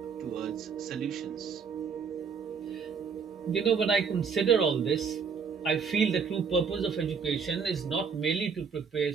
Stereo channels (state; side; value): quieter; left; 5.9 dB